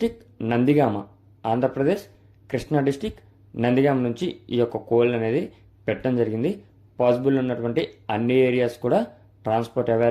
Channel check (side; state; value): both; identical; correlation 1.00